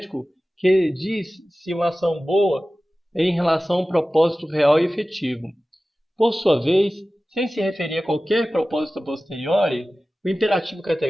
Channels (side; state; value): both; normal; correlation 0.96